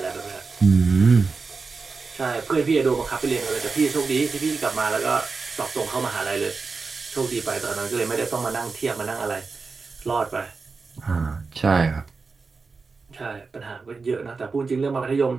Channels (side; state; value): left; quieter; 4.5 dB